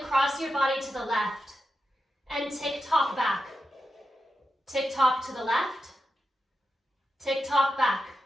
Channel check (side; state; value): both; normal; correlation 0.89